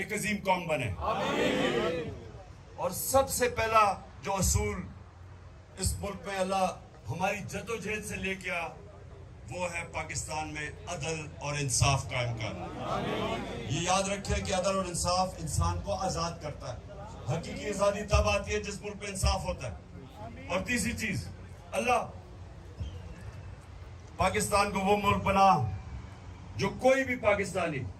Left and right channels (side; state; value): both; identical; correlation 1.00